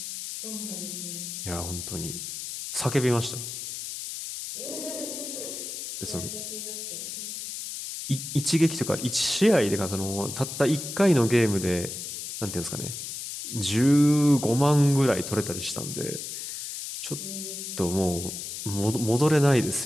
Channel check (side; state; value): left; noise; hiss, 7 dB below the sound